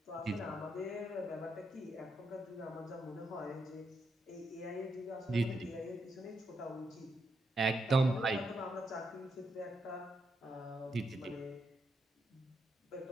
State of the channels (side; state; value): both; normal; correlation 0.81